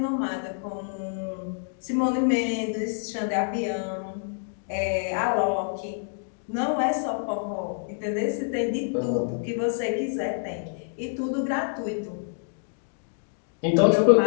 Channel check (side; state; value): right; silent; digital silence